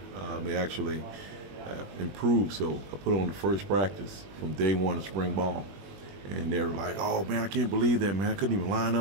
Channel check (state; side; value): late; left; 21 ms